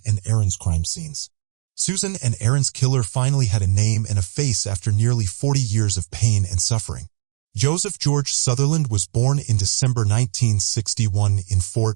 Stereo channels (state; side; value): silent; left; digital silence